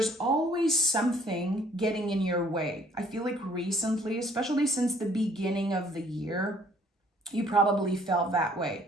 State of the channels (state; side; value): normal; both; correlation 0.60